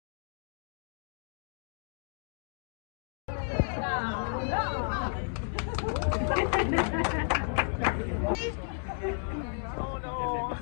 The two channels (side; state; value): right; silent; 56 dB below the other